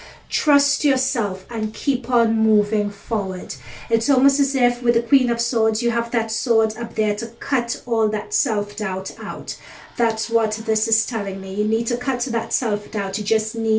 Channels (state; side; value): identical; both; correlation 1.00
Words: Trust yourself and keep on moving forward. It's almost as if with the Queen of Swords you have that sword up there to cut all that self-doubt out. That's what this is telling me. You need to cut that self-doubt. You just